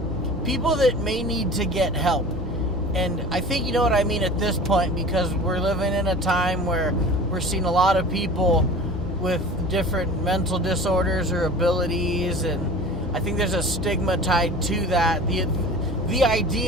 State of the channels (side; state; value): both; normal; correlation 0.39